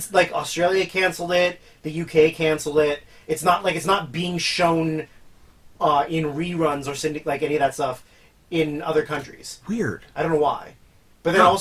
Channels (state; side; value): identical; both; correlation 1.00